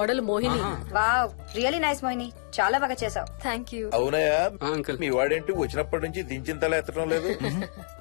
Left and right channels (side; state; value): right; silent; digital silence